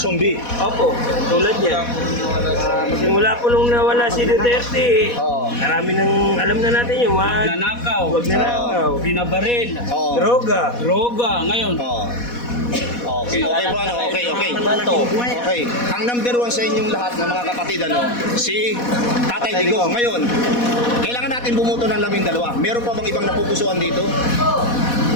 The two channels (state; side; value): late; right; 4.1 ms